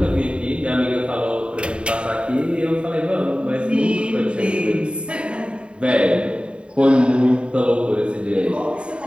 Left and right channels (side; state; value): left; late; 0.055 ms